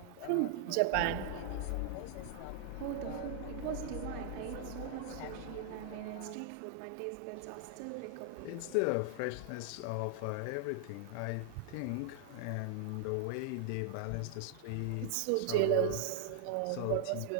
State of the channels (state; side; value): different; both; correlation -0.01